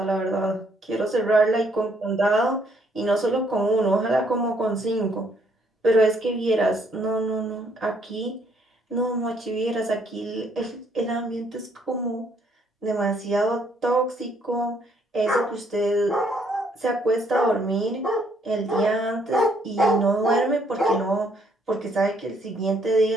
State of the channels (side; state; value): both; normal; correlation 0.68